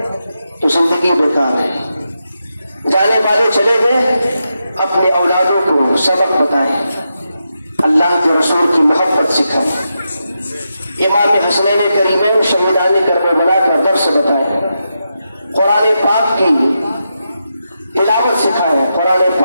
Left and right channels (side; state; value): both; inverted; correlation -0.86